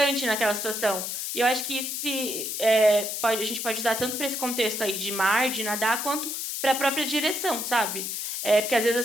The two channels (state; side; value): noise; left; hiss, 4 dB below the sound